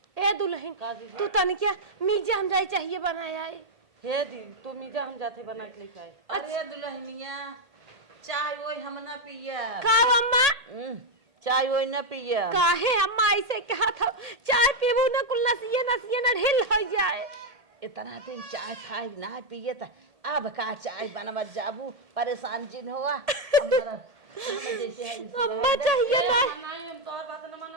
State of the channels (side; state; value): left; late; 1.7 ms